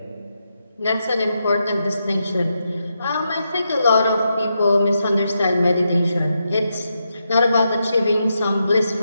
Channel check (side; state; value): both; inverted; correlation -0.84